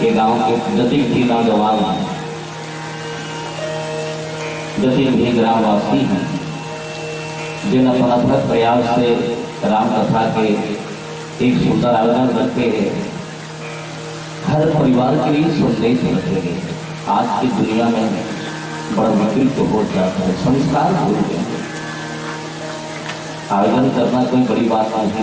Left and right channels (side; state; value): both; identical; correlation 1.00